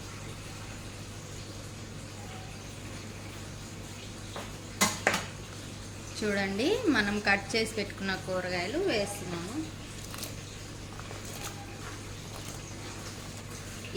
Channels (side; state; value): both; identical; correlation 1.00